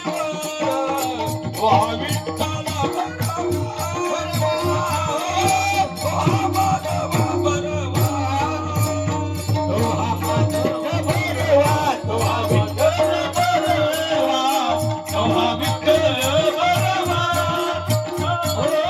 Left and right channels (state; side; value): identical; both; correlation 1.00